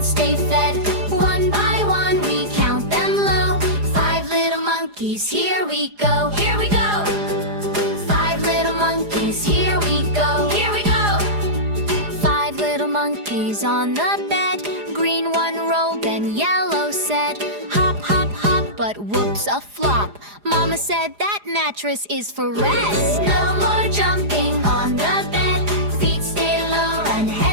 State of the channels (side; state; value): left; late; 4.9 ms